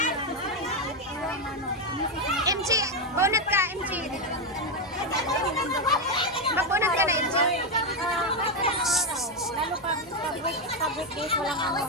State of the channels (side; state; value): both; normal; correlation 0.06